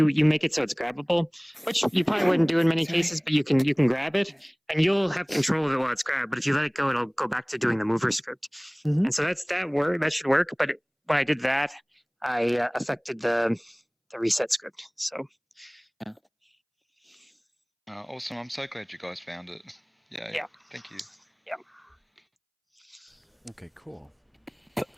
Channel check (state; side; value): identical; both; correlation 1.00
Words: make it so it's grabbable, which you probably wouldn't do in many cases, but you can grab it, and you'll have control of it while it's grabbed. But if you let it go, it'll go back to doing the mover script, and so that should work. But when I did that, I affected the reset script. So. Awesome! I'm so glad you guys found it. Yeah. Thank you. Yeah. Okay, cool.